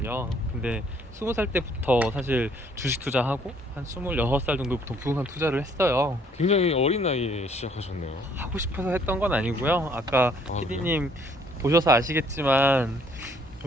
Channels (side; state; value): both; normal; correlation 0.63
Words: 근데 20살 때부터 사실 주식 투자하고 한 26살 정도부터 부동산 투자를 했어요. 굉장히 어린 나이에 시작하셨네요. 하고 싶어서 했던 건 아니고요. 아까 그래요? PD님 보셔서 아시겠지만